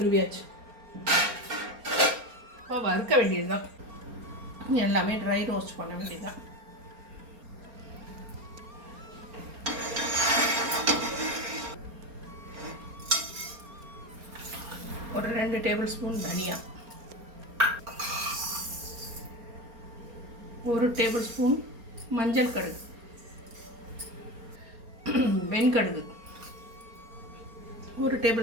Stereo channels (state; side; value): late; left; 4.3 ms